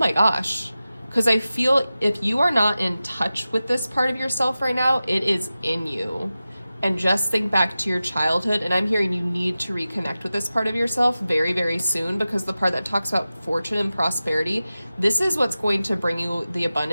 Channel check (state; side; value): inverted; both; correlation -0.95